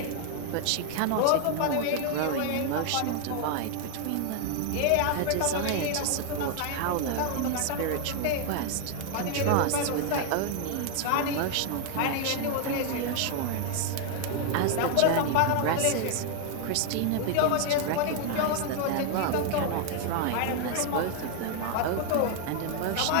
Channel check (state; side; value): different; both; correlation 0.00